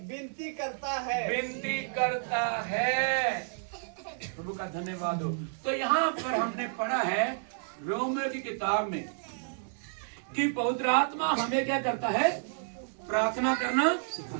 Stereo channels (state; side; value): silent; left; 57 dB below the other